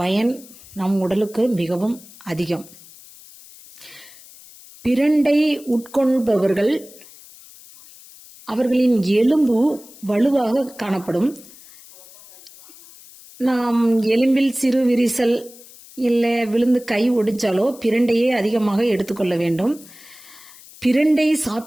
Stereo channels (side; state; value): left; noise; hiss, 21 dB below the sound